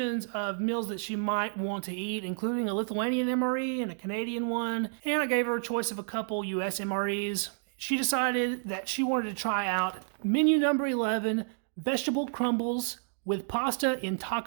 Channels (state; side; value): silent; left; digital silence